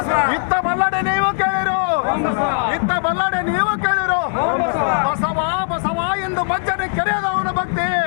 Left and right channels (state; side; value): silent; right; digital silence